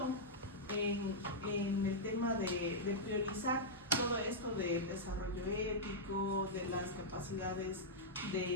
en el tema de priorizar todo esto del desarrollo ético, de las capacidades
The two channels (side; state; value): both; normal; correlation -0.09